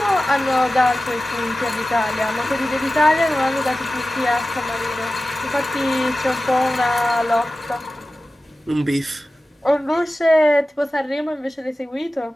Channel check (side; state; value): both; normal; correlation 0.95